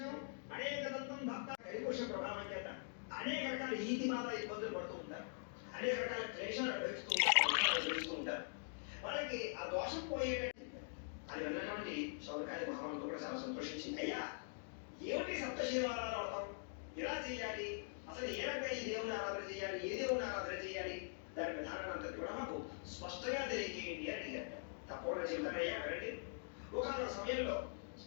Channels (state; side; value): silent; right; digital silence